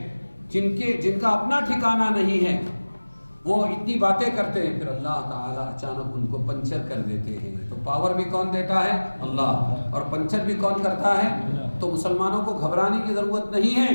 جن کا اپنا ٹھکانہ نہیں ہے، وہ اتنی باتیں کرتے ہیں، پھر اللہ تعالیٰ اچانک ان کو پنچر کر دیتے ہیں۔ تو پاور بھی کون دیتا ہے؟ اللہ، اور پنچر بھی کون کرتا ہے؟ تو مسلمانوں کو گھبرانے کی ضرورت نہیں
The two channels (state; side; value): inverted; both; correlation -1.00